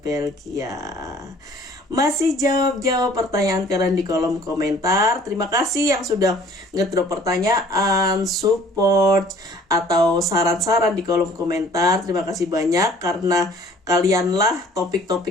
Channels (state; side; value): normal; both; correlation 0.54